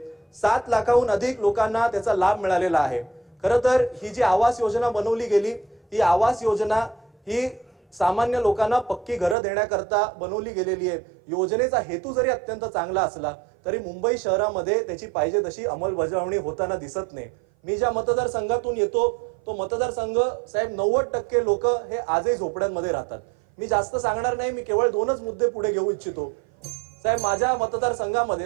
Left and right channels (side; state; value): left; drops out; at 9.3 s